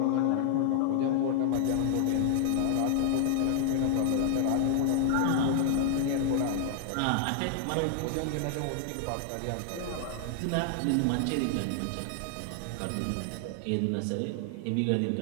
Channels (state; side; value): different; both; correlation 0.00